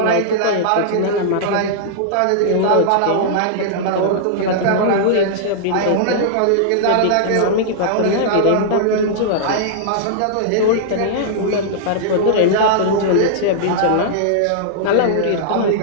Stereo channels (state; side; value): different; both; correlation -0.02